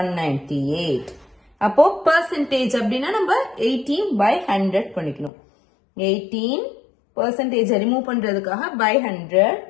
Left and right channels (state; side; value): drops out; right; at 5.3 s